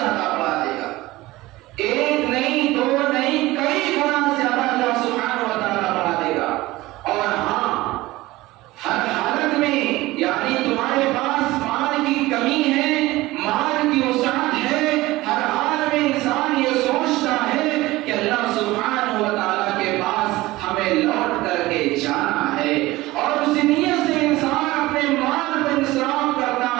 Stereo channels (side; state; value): left; quieter; 18.9 dB